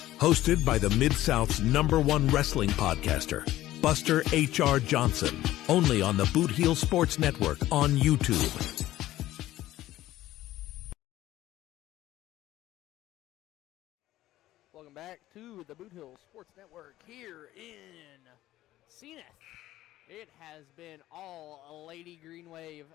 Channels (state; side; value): quieter; right; 15.0 dB